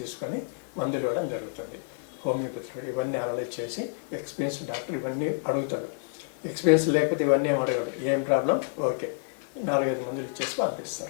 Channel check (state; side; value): silent; right; 59 dB below the other